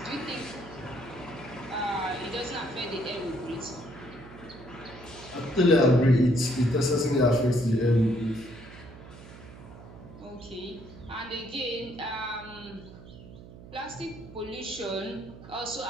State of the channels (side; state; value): right; noise; hum, 17 dB below the sound